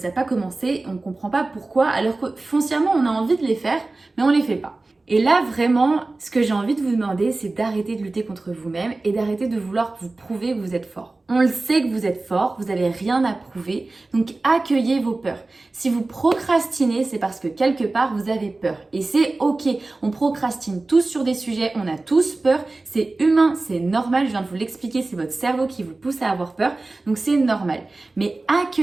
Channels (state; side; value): quieter; left; 3.2 dB